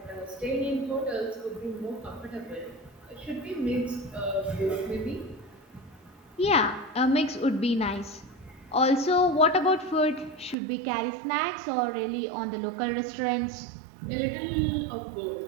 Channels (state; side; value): drops out; left; at 10.6 s